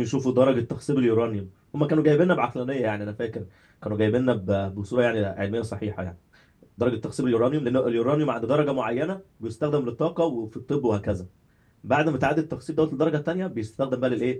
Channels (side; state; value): both; identical; correlation 1.00